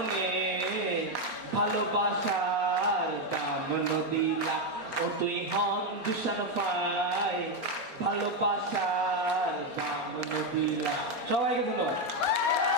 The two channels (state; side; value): late; left; 4.3 ms